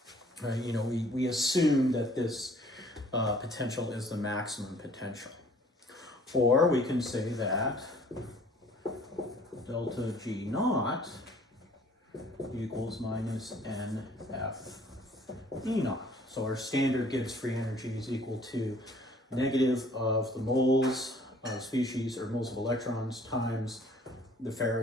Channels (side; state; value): both; normal; correlation 0.56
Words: you know, we assume that this potential is the maximum potential. Or we can say that delta G naught equals minus NF E naught. So our standard Gibbs free energy is equal to negative of the moles of species, or moles of electrons, times the